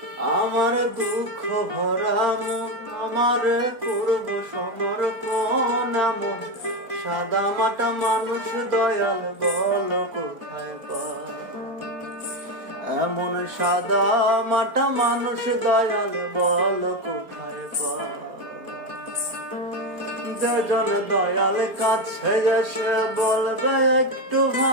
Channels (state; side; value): late; left; 4.4 ms